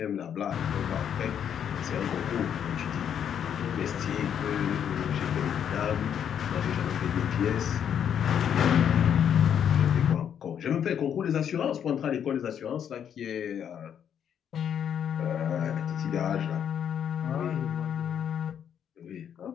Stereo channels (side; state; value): right; quieter; 8.7 dB